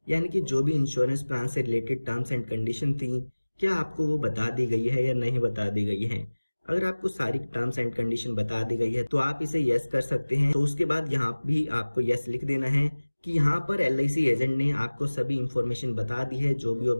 यानी कि जो भी इंश्योरेंस प्लान से रिलेटेड टर्म्स एंड कंडीशन थी क्या आपको वो बता दी गई है या नहीं बता दी गई है। अगर आपको सारी टर्म्स एंड कंडीशन बता दी गई है तो आप इसे यस कर सकते हैं। तो उसके बाद यहाँ भी आपको यस लिख देना है कि यहाँ पर LIC एजेंट ने आपको सभी इंफॉर्मेशन बता दी है जो भी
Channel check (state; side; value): inverted; both; correlation -1.00